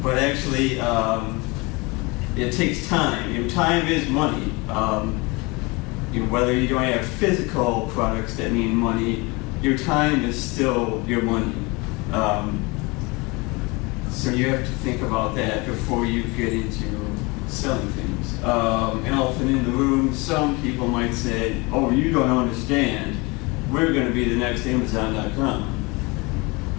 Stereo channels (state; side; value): quieter; right; 26.2 dB